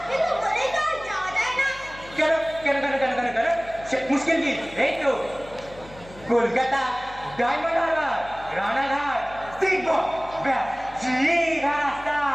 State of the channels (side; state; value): left; noise; hum, 20 dB below the sound